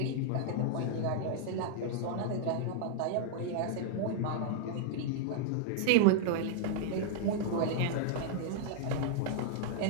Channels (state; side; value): different; both; correlation -0.01